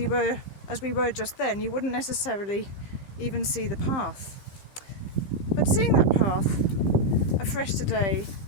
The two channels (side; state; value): right; late; 15 ms